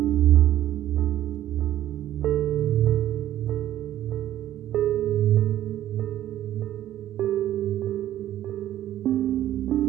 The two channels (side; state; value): left; quieter; 12.6 dB